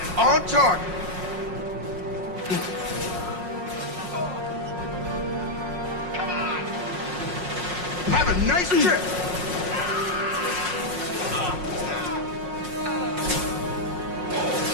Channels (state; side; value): late; left; 5.5 ms